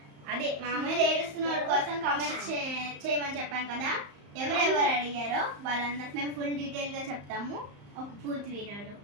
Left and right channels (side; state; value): left; late; 34 ms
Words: అదే మామూలు ఏడుస్తున్న వాళ్ళ కోసం కమెంట్స్ చేయమని చెప్పాను కదా. ఎవరెవరు అడిగారో వాళ్ళందరికి మేము ఫుల్ డీటెయిల్ గా చెప్తాము ఒక పూర్తి వీడియోలో.